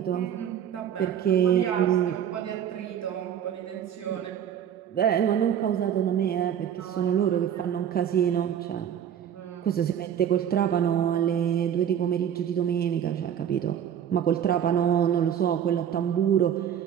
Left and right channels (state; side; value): quieter; left; 9.3 dB